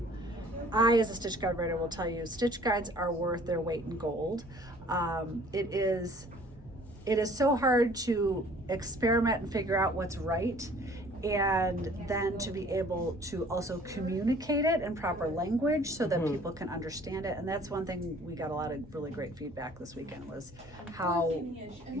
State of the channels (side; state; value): both; normal; correlation 0.53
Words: I, as a stitch guide writer, will tell you stitch guides are worth their weight in gold. It is so hard to experiment and figure out what's right, and then to be able to also communicate it in proper language so that people can understand it. And that's one thing we got a lot of really great feedback this weekend, was how